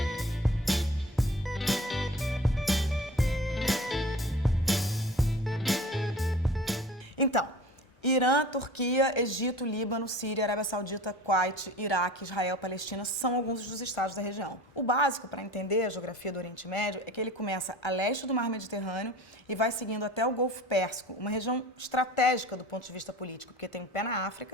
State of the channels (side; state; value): both; normal; correlation 0.42